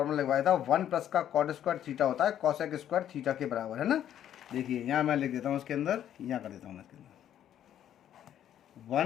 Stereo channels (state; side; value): quieter; right; 10.6 dB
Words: लगवाया था, 1 प्लस का कॉट स्क्वायर थीटा होता है कॉसेक स्क्वायर थीटा के बराबर, है ना। देखिए यहाँ मैं लिख देता हूँ उसके अंदर, यहाँ कर देता हूँ मैं इसके अंदर